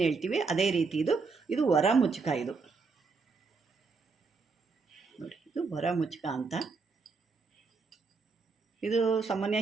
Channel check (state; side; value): quieter; left; 4.5 dB